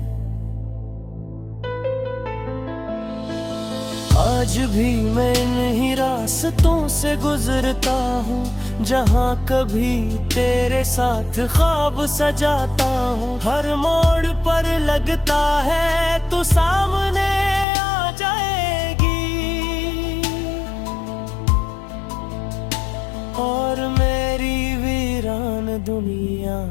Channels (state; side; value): drops out; right; at 17.7 s